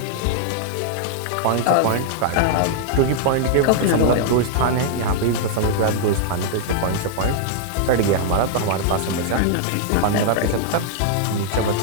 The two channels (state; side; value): different; both; correlation -0.01